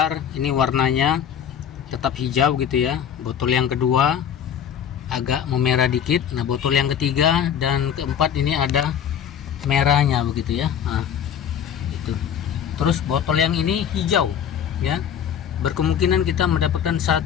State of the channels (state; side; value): quieter; right; 8.8 dB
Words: ini warnanya tetap hijau gitu ya. Botol yang kedua agak memerah dikit. Nah, botol yang ketiga dan keempat ini ada merahnya begitu ya. Nah, itu. Terus botol yang ini hijau ya. Berkemungkinan kita mendapatkan